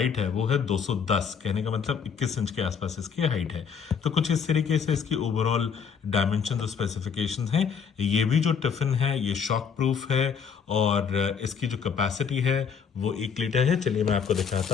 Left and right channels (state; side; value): quieter; right; 6.6 dB